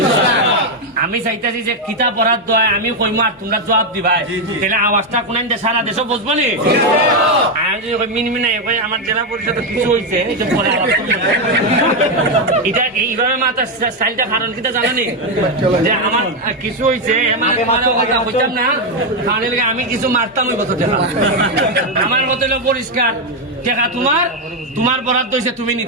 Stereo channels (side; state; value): both; normal; correlation 0.05